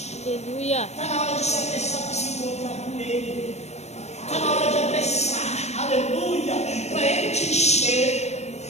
Aleluia. Está na hora de se apressar para se encontrar com Ele. Está na hora de apressar. Aleluia. Para Ele te encher.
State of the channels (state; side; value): late; right; 0.32 ms